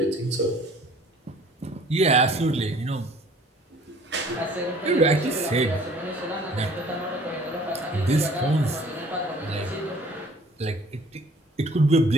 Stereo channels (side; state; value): both; normal; correlation 0.53